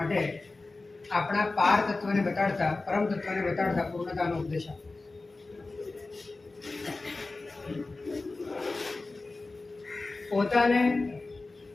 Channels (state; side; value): quieter; right; 3.4 dB